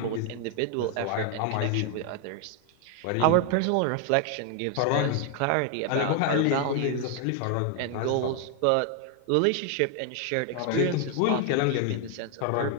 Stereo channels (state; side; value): different; both; correlation 0.01